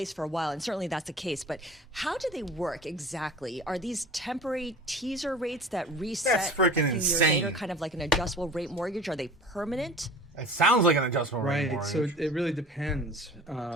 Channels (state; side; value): normal; both; correlation 0.41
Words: for a while, and certainly that's the case. But how do they work exactly? Are these temporary teaser rates that reset a few years later, kind of like an adjustable rate mortgage? Are they permanent? It sounds like an adjustable rate mortgage. So it really depends.